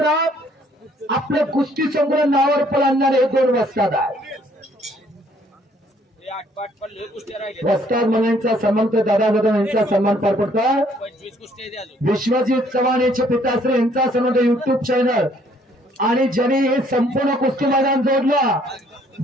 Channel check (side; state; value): both; normal; correlation 0.63